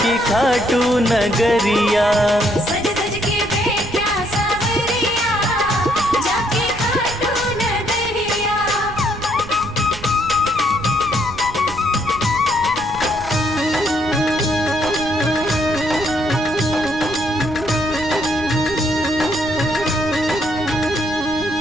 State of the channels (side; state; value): right; noise; rumble, 13 dB below the sound